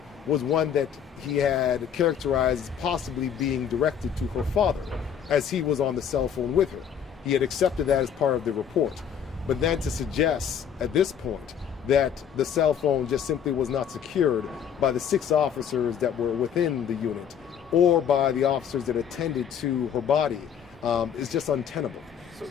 was one that he had characterized as possibly being directed to her father, as he was on the cell phone with her. He had accepted that as part of the report. But then to suggest at this point that the cell phone just simply was not secured by the 6 officers that were within the unit or by the officers that attended to her body is just untenable. So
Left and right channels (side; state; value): right; quieter; 8.3 dB